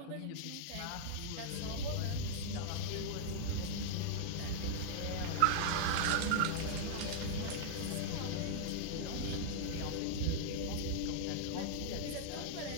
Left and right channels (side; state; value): both; different; correlation -0.01